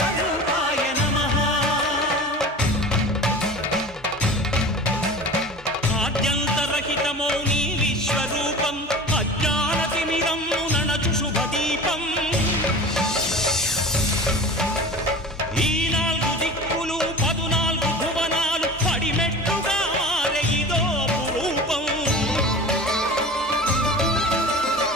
నమః ఆద్యంతరహితమో నీ విశ్వరూపం అజ్ఞానతిమిరం నణచు శుభదీపం ఈ 4 దిక్కులు 14 భువనాలు పడిమెట్టుగా మారే ఇదో అపురూపం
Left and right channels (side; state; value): both; normal; correlation 0.36